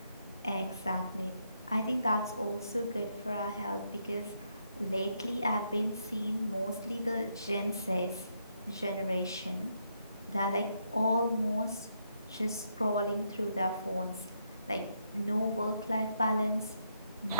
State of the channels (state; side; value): inverted; both; correlation -0.76